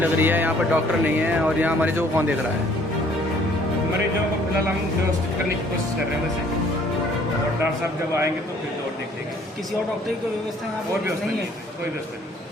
रही है, यहाँ पर डॉक्टर नहीं है, और यहाँ मरीजों को कौन देख रहा है? मरीजों को फिलहाल हम व्यवस्थित करने की कोशिश कर रहे हैं वैसे, और डॉक्टर साहब जब आएंगे तो फिर और देख लेंगे। किसी और डॉक्टर की कोई व्यवस्था यहाँ और व्यवस्था नहीं है? कोई व्यवस्था नहीं।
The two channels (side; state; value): both; normal; correlation 0.59